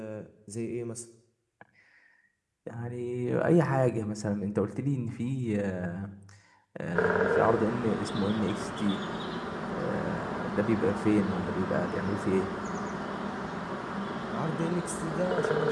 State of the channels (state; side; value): identical; both; correlation 1.00